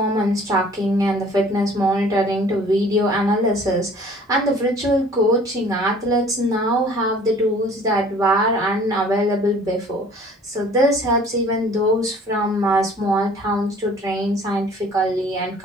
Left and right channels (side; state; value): both; normal; correlation 0.51